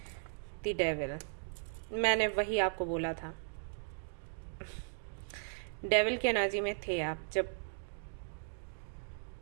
द डेविल, मैंने वही आपको बोला था। डेविल की एनर्जी में थे आप जब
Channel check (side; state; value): left; silent; digital silence